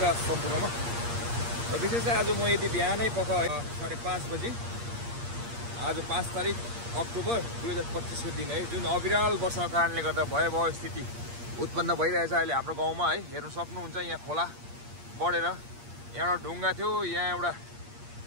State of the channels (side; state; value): left; late; 8.5 ms